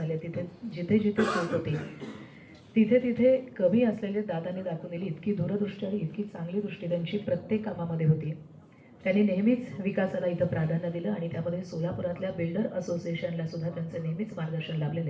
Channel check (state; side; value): identical; both; correlation 1.00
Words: तिथे जिथे जिथे चूक होती, तिथे तिथे कमी असलेले दादांनी दाखवून दिली इतकी दूरदृष्टी आणि इतकी चांगली दृष्टी त्यांची प्रत्येक कामामध्ये होती. त्यांनी नेहमीच विकासाला इथं प्राधान्य दिलं आणि त्यामध्ये सोलापुरातल्या बिल्डर असोसिएशनला सुद्धा त्यांचं नेहमीच मार्गदर्शन